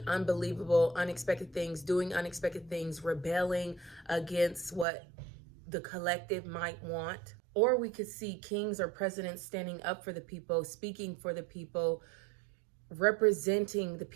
unbelievable, unexpected things, doing unexpected things, rebelling against what the collective might want. Or we could see kings or presidents standing up for the people, speaking for the people, representing the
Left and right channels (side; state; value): left; drops out; at 4.9 s